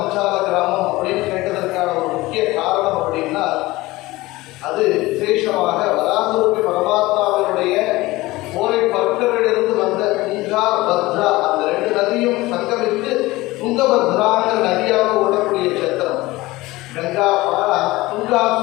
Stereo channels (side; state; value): right; quieter; 19.7 dB